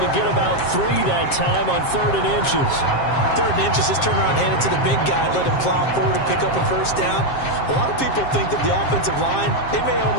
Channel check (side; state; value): right; late; 7.5 ms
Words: get about 3 that time on 3rd and inches. 3rd and inches, just turn around, hand it to the big guy, let him plow forward and pick up a first down. A lot of people think that the offensive line, they may